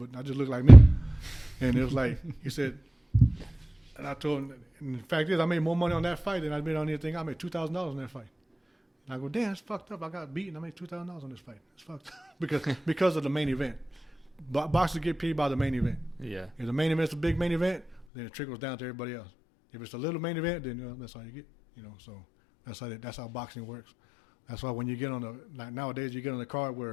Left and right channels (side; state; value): right; drops out; at 18.0 s